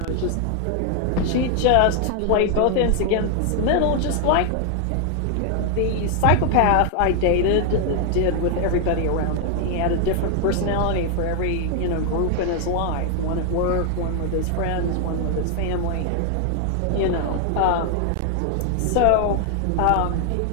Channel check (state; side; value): different; both; correlation 0.00